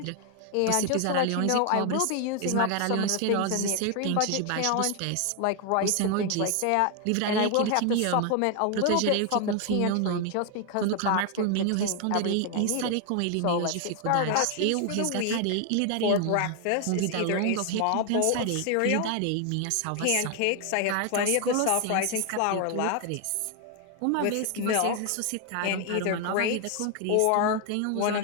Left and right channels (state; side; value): different; both; correlation 0.00